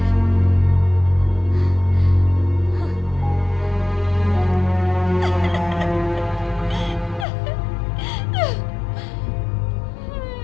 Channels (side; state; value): right; drops out; at 7.2 s